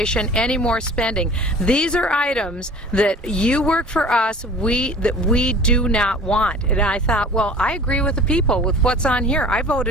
any more spending. These are items that you work for us, that we do not want. And I thought, well, I agree with the people with what's on here. I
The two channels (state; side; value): normal; both; correlation 0.44